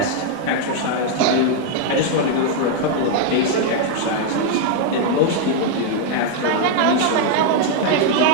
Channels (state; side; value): different; both; correlation 0.00